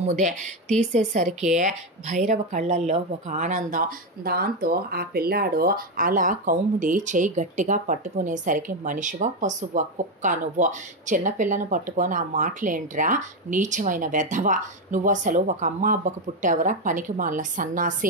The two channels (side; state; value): both; normal; correlation 0.09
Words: తీసేసరికి భైరవ కళ్ళల్లో ఒక ఆనందం. దాంతో ఆ పిల్లాడు అలా కౌముది చేయి గట్టిగా పట్టుకునేసరికి మనిషివా పశువా కుక్క నువ్వు, చిన్నపిల్లను పట్టుకొని ఆ మాటలేంట్రా, నీచమైన వెధవా, నువ్వు అసలు ఒక అమ్మ అబ్బకు పుట్టావురా పనికి మాల